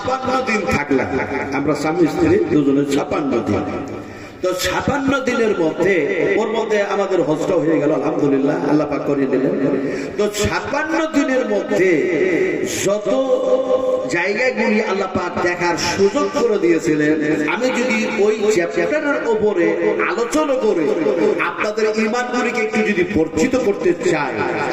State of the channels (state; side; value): identical; both; correlation 1.00